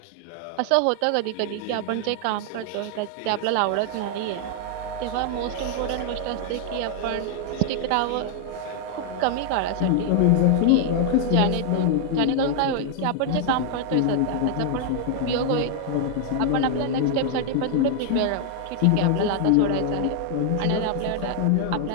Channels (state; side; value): different; both; correlation 0.00